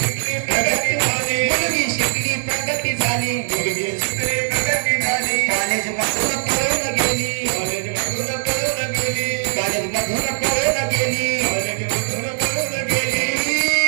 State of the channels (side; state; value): left; silent; digital silence